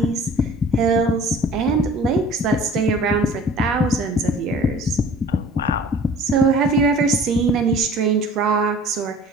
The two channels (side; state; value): both; normal; correlation 0.47